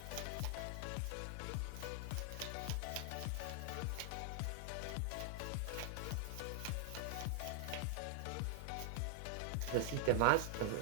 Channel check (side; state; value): both; different; correlation 0.00